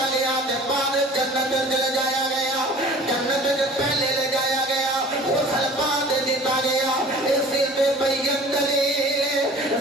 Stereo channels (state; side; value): normal; both; correlation 0.46